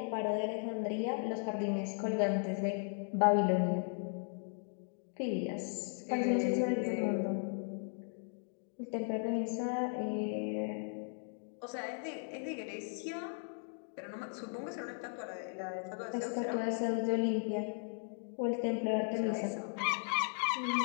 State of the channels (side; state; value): right; silent; 53 dB below the other